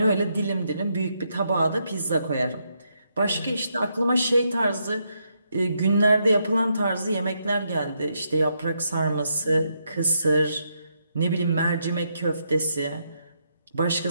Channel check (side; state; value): both; inverted; correlation -0.79